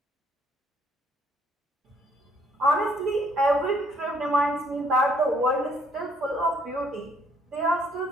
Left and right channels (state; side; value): normal; both; correlation 0.66